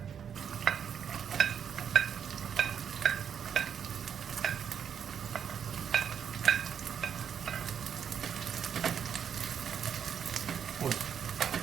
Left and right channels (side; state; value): left; quieter; 7.9 dB